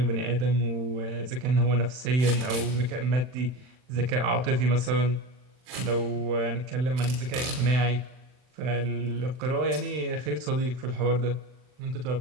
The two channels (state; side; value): late; left; 39 ms